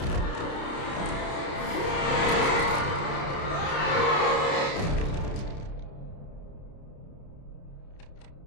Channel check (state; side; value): late; right; 30 ms